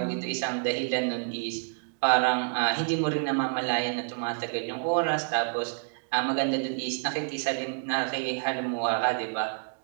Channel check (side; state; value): left; silent; digital silence